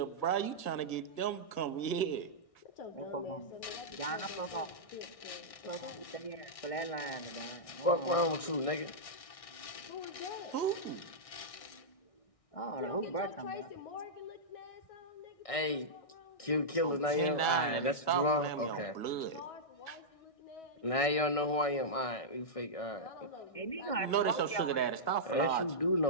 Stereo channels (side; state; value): right; late; 1.6 ms